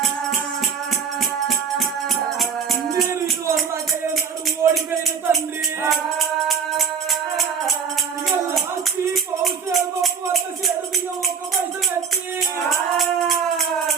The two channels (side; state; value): left; quieter; 6.4 dB